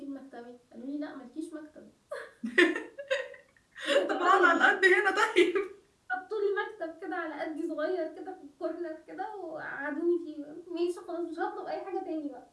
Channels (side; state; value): both; identical; correlation 1.00